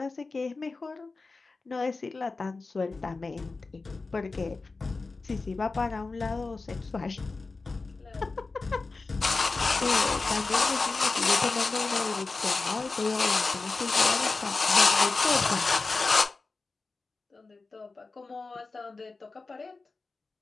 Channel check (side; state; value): right; quieter; 3.8 dB